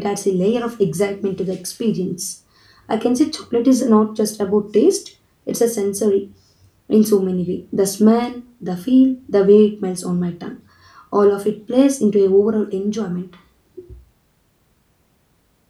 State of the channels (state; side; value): identical; both; correlation 1.00